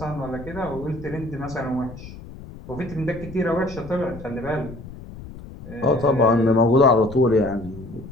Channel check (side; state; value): left; noise; rumble, 14 dB below the sound